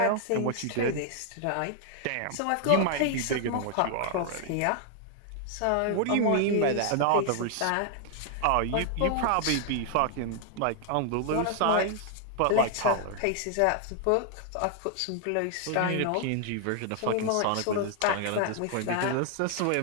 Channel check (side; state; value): both; different; correlation 0.00